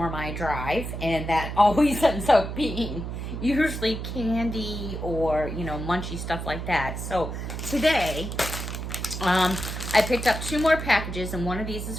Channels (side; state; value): right; noise; hum, 6 dB below the sound